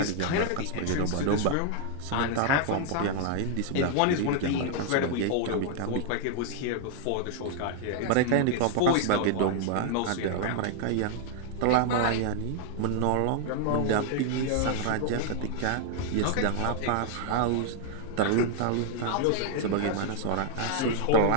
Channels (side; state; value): both; different; correlation 0.00